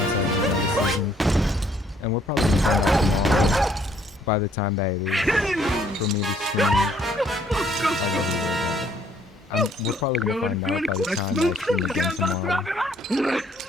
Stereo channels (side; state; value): both; normal; correlation 0.64